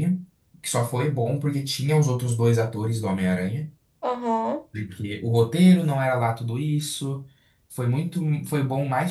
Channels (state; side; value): identical; both; correlation 1.00